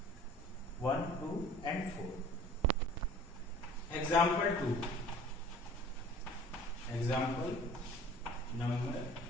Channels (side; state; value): both; normal; correlation 0.47